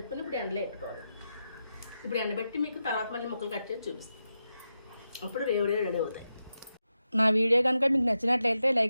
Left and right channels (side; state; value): both; inverted; correlation -0.88